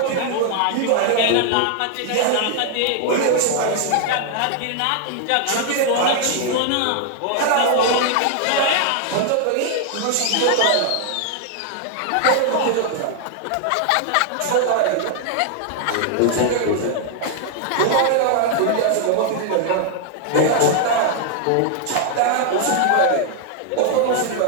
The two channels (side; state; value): both; different; correlation 0.00